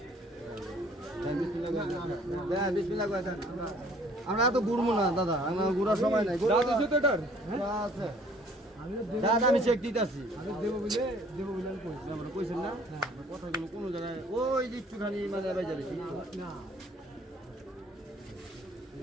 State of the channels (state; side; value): normal; both; correlation 0.57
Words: আমরা তো ঘুরবো না দাদা আমরা ঘুরার সময় নাই আছে দাদা আমি চেক দিতেছি কইছেন না কথাগুলো কোনো জায়গায় ওই যে একটুখানি মানে বাজে বেশি